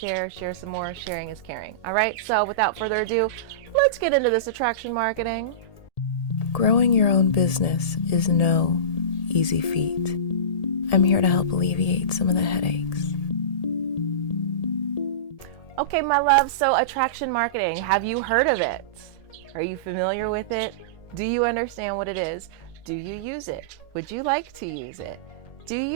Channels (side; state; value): right; late; 1.7 ms